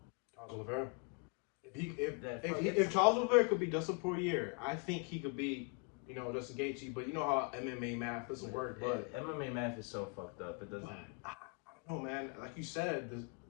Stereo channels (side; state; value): right; quieter; 34.8 dB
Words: Charles Oliveira. If Charles Oliveira could beat Dustin Poirier, I think he could beat, you know, Justin Gaethje. But you know how MMA math doesn't work. But MMA math is so fucked up. It doesn't. I don't know, man. Like you said,